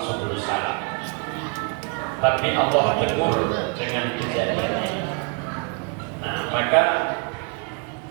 Subulu Salam. Tapi Allah tegur dengan kejadian ini. Nah, maka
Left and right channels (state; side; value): quieter; left; 35.8 dB